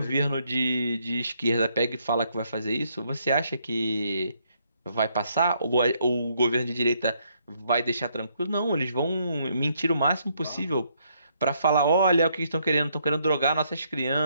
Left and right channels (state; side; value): inverted; both; correlation -0.72